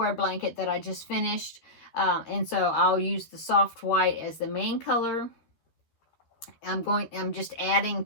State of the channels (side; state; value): right; late; 13 ms